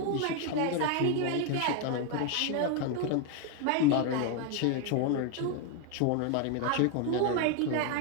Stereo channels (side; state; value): both; different; correlation 0.01